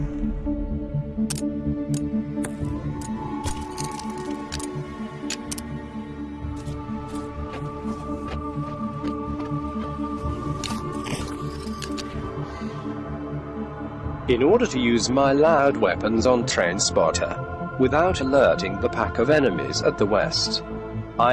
In order to use my loud weapons on Trainspotter, without alerting the pack of enemies at the west,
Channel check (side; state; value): both; identical; correlation 1.00